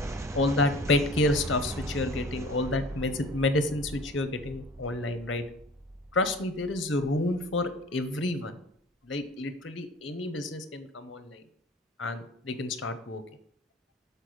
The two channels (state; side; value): normal; both; correlation 0.44